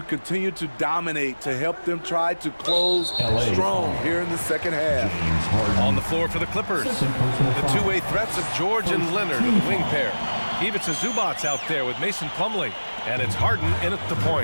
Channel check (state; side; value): inverted; both; correlation -1.00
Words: continue to dominate, to help them try to close strong here in the second half. On the floor for the Clippers, the two-way threats of George and Leonard, the wing pair. Ivica Zubac's out there with Mason Plumlee. And it's Harden in at the